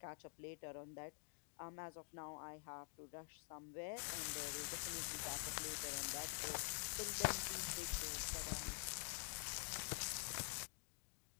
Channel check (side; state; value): right; silent; digital silence